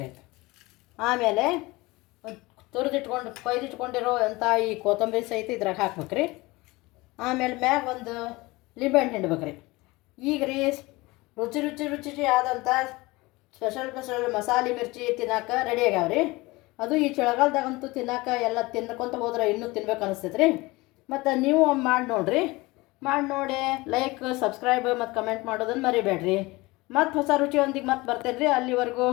ರೀ. ಆಮೇಲೆ ಕೊಯ್ದಿಟ್ಕೊಂಡಿರೋ ಅಂಥ ಈ ಕೊತ್ತಂಬರಿ ಸಹಿತ ಇದ್ರಾಗ ಹಾಕ್ಬೇಕು ರೀ. ಆಮೇಲೆ ಮ್ಯಾಗ ಒಂದು ಲಿಂಬೆಹಣ್ಣು ಹಿಂಡ್ಬೇಕು ರೀ. ಈಗ ರೀ ರುಚಿ ಆದಂಥ ಸ್ಪೆಷಲ್ ಮಸಾಲೆ ಮಿರ್ಚಿ ತಿನ್ನೋಕೆ ರೆಡಿ ಆಗ್ಯಾವ್ರಿ. ಅದು ಈ ಚಳಿಗಾಲದಾಗಂತೂ ತಿನ್ನೋಕೆ ಎಲ್ಲ ತಿನ್ಕೊಂತ ಹೋದ್ರೆ ಇನ್ನೂ ತಿನ್ಬೇಕು ಅನಿಸ್ತೈತೆ ರೀ. ಮತ್ತು ನೀವು ಮಾಡಿ ನೋಡಿರಿ. ಮಾಡಿ ನೋಡಿ ಲೈಕ್, ಸಬ್ಸ್ಕ್ರೈಬ್ ಮತ್ತು ಕಮೆಂಟ್ ಮಾಡೋದನ್ನು ಮರಿಬೇಡ್ರಿ. ಮತ್ತು ಹೊಸ ರುಚಿಯೊಂದಿಗೆ ಮತ್ತೆ ಬರ್ತೇನೆ ರೀ. ಅಲ್ಲಿವರೆಗೂ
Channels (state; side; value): quieter; right; 22.0 dB